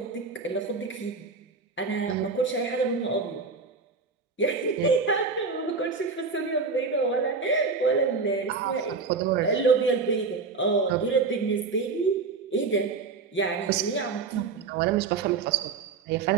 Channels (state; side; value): quieter; left; 4.7 dB